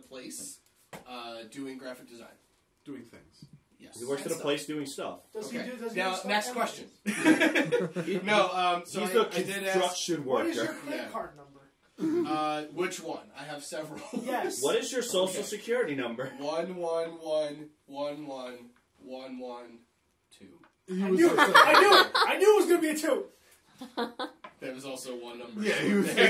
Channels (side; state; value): both; identical; correlation 1.00